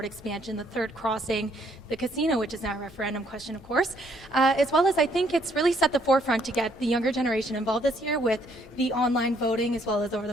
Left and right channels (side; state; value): both; normal; correlation 0.67